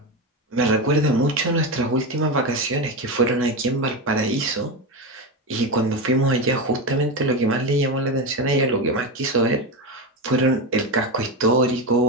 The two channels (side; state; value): both; normal; correlation 0.16